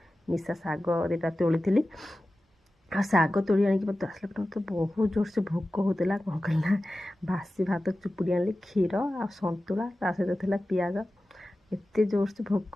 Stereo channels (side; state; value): both; normal; correlation 0.95